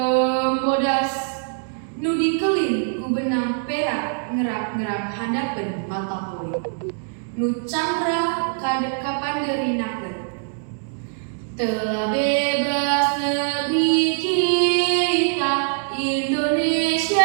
bodas nu dikelin ku benang perak ngerap-ngerap handapeun mata poe nu cangra kapandeurinakeun. Telah bebas negeri kita,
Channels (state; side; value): silent; left; digital silence